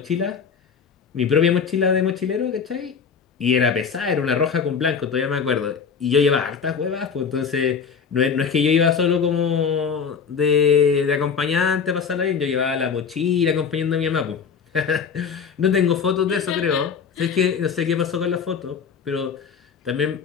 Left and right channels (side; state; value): right; quieter; 6.3 dB